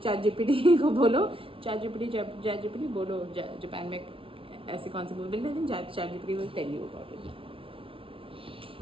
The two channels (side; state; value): left; late; 0.26 ms